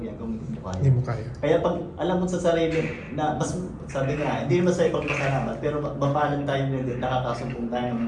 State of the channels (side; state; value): both; identical; correlation 1.00